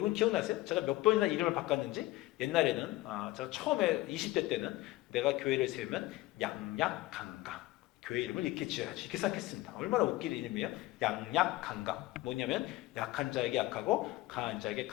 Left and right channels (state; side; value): quieter; right; 18.2 dB